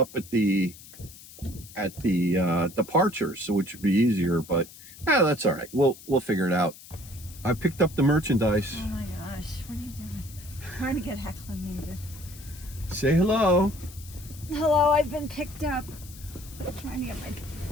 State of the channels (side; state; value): left; noise; hiss, 18 dB below the sound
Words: at the departures, which would be easier, but that's all right. We'll figure it out. I picked up the merchandise. Oh my gosh, what are you doing? Trying to get acclimated. Say hello. Hello, I've been picked up. I'm trying to get my